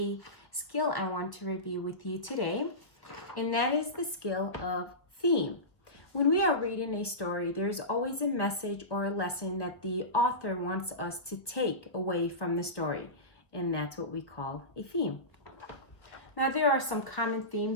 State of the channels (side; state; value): right; late; 1.2 ms